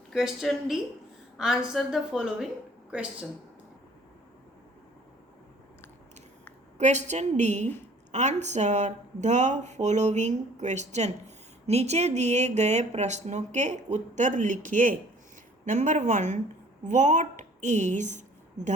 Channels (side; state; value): both; normal; correlation 0.53